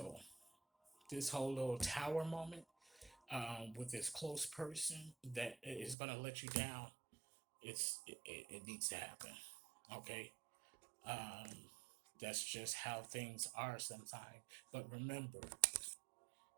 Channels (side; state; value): left; drops out; at 6.0 s